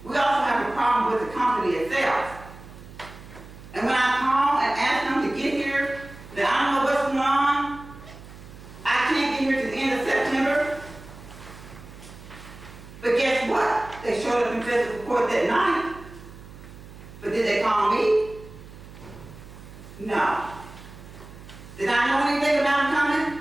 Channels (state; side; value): noise; right; hum, 17 dB below the sound